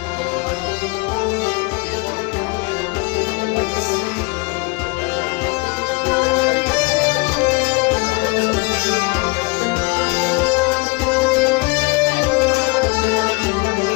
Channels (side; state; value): right; quieter; 27.7 dB